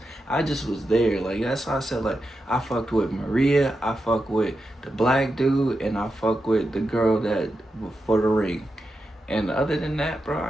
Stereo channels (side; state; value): both; normal; correlation 0.88